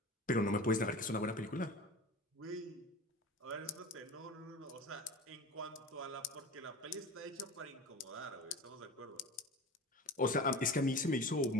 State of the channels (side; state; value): both; normal; correlation 0.34